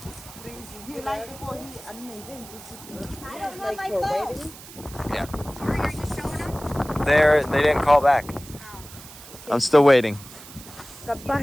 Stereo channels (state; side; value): noise; right; hiss, 17 dB below the sound